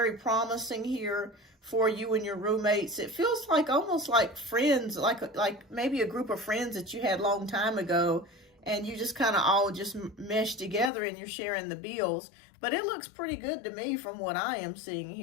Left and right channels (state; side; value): drops out; right; at 10.9 s